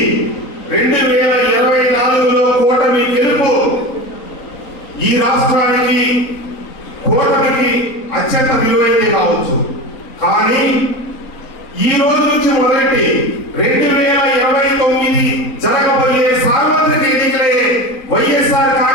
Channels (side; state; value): right; late; 3.9 ms